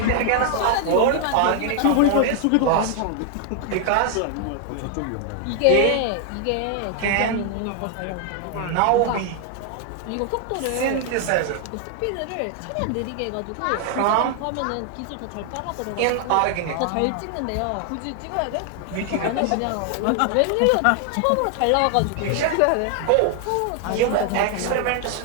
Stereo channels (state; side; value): different; both; correlation 0.00